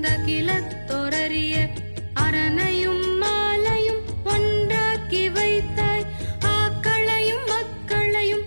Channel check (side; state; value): both; inverted; correlation -1.00